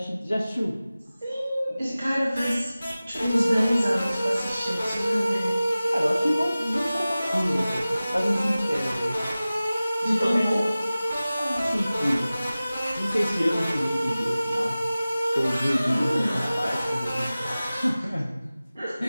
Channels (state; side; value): inverted; both; correlation -0.97